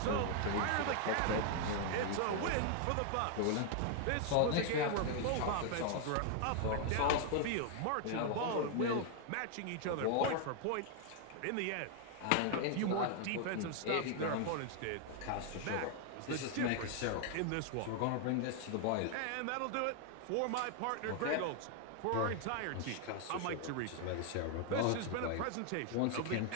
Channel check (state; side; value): different; both; correlation 0.00